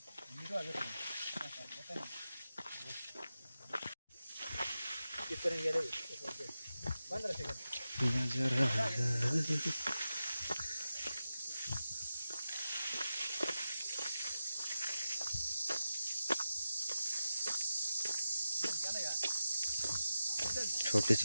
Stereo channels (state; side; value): inverted; both; correlation -0.92